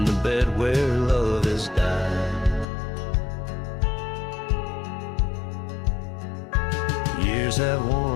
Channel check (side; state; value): right; drops out; at 2.7 s